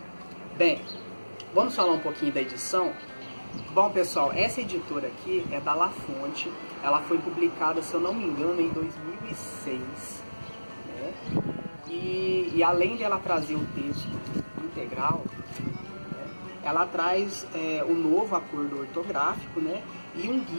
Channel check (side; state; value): both; inverted; correlation -1.00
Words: Bem, vamos falar um pouquinho da edição? Bom, pessoal, essa editora aqui é da La Fonte, ela foi publicada, se eu não me engano, em 2006, né? E além dela trazer o texto integral, né, ela traz um novo acordo ortográfico, né, e um